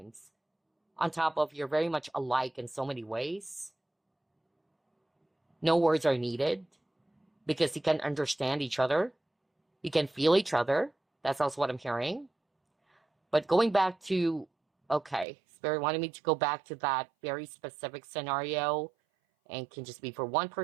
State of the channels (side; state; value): left; drops out; at 15.2 s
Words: On top of you're very much alike in so many ways. No words are needed because you can understand each other. You can feel each other. That's also what I'm hearing. But going back to, okay, Spirit wanted me to go back to that very specific scenario, and can just be for one